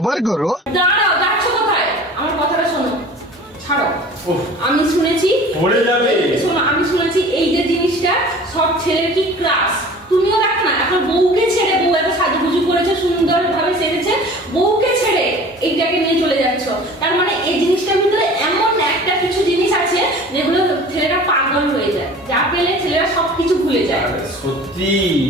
करो। দাঁড়াও, যাচ্ছ কোথায়? আমার কথাটা শোনো, ছাড়ো। আমি শুনেছি পড়ে যাবে। শোনো, আমি শুনেছি এই যে জিনিসটা সব ছেলের কি ক্রাশ। তুমিও দেখো না, এখন বউকে ছেড়ে, বউ এত সাজুগুজু করেছে, সুন্দরভাবে সেজেছে, বউকে ছেড়ে এইটাকে নিয়ে চলে যাচ্ছ। তার মানে এই জিনিসটার ভিতরে এমন একটা কিছু জিনিস আছে যেগুলো ছেলেরা পাগল হয়ে যায়, যা পেলে ছেলেরা সবকিছু ভুলে যায়। সত্যি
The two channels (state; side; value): normal; both; correlation 0.43